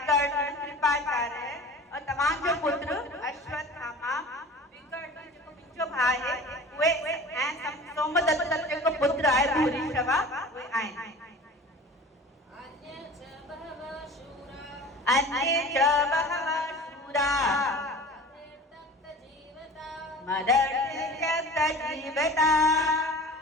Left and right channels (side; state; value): both; normal; correlation 0.40